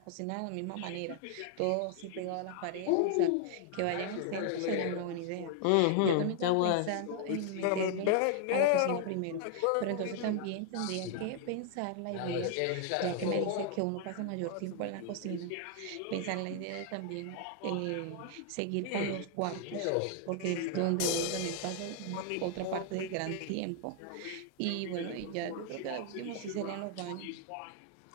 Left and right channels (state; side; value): different; both; correlation 0.00